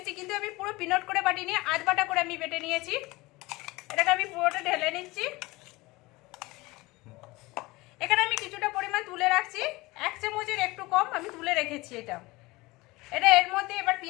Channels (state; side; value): quieter; right; 21.7 dB